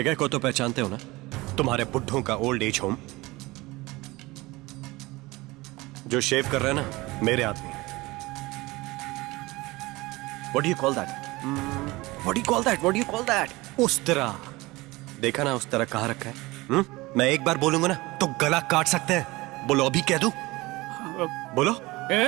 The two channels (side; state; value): left; quieter; 21.3 dB